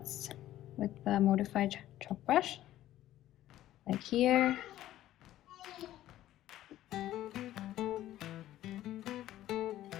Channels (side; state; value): right; quieter; 13.7 dB